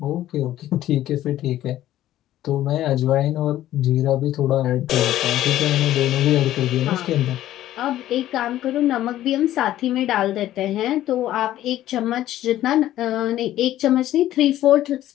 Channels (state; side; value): quieter; right; 13.5 dB